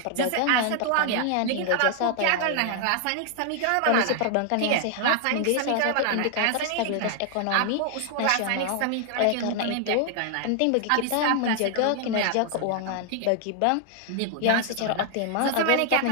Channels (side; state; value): both; different; correlation 0.00